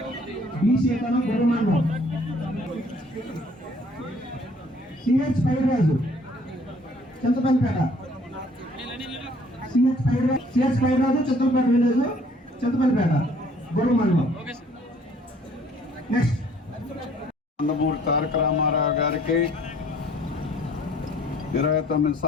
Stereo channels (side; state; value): both; normal; correlation 0.58